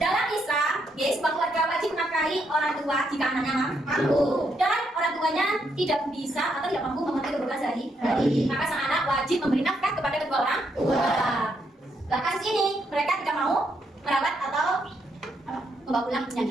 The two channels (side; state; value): both; normal; correlation 0.77